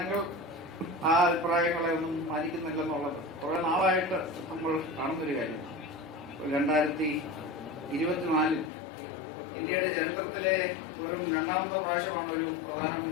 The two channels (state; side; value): drops out; right; at 8.7 s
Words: ആ അഭിപ്രായങ്ങളെ ഒന്നും പാലിക്കുന്നില്ലെന്നുള്ളത് കുറെ നാളായിട്ട് നമ്മൾ കാണുന്നൊരു കാര്യമാണ്. 2024 ഇന്ത്യയുടെ ചരിത്രത്തിലെ വെറും രണ്ടാമത്തെ പ്രാവശ്യമാണ് ഒരു